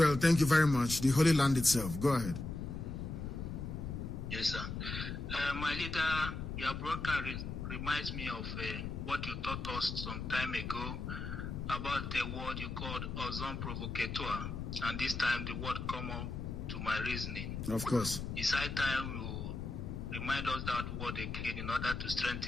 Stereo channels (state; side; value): noise; left; rumble, 5 dB below the sound